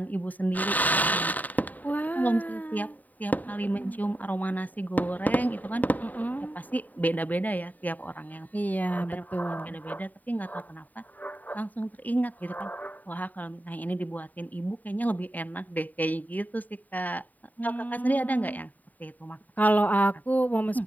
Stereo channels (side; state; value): right; late; 0.080 ms